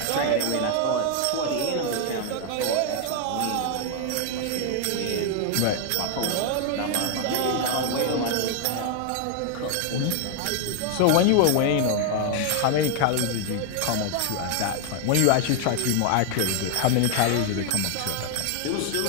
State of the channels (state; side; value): different; both; correlation 0.00